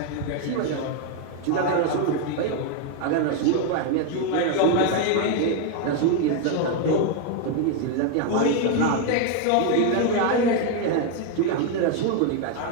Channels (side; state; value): both; different; correlation 0.01